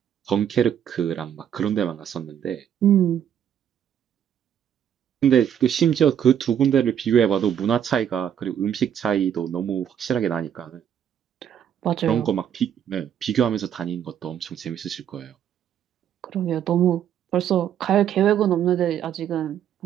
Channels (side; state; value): left; quieter; 9.3 dB